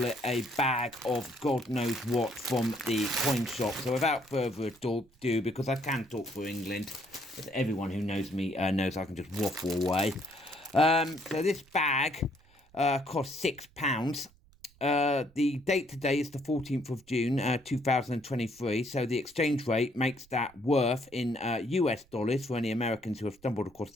it, a bag of God knows what from the coin shop. So without further ado, because I can talk for England, as everyone who knows me knows I can just waffle away. So this bag cost £6. The date today is the 14th of June, 2023. So the exchange rate makes that worth in US dollars for any Americans who have stumbled across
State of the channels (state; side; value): noise; right; rumble, 29 dB below the sound